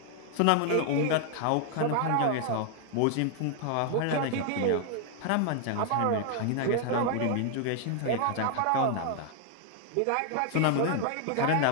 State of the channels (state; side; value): different; both; correlation 0.00